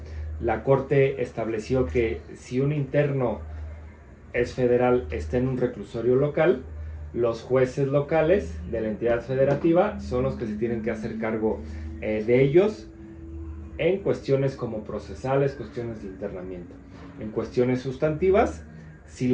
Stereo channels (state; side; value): identical; both; correlation 1.00